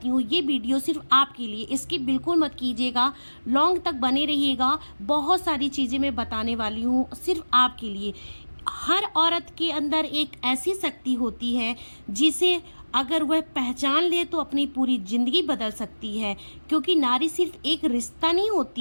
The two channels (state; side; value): inverted; both; correlation -1.00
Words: हूँ, ये वीडियो सिर्फ आपके लिए, इसकी बिल्कुल मत कीजिएगा, लॉन्ग तक बने रहिएगा। बहुत सारी चीज़ें मैं बताने वाली हूँ सिर्फ आपके लिए। हर औरत के अंदर एक ऐसी शक्ति होती है जिसे अगर वह पहचान ले तो अपनी पूरी जिंदगी बदल सकती है। क्योंकि नारी सिर्फ एक रिश्ता नहीं